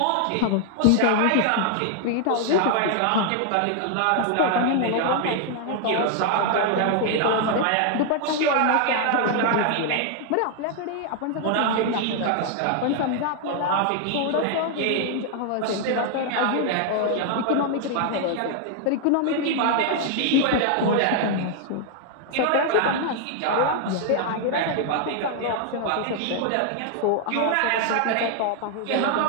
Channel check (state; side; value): different; both; correlation 0.00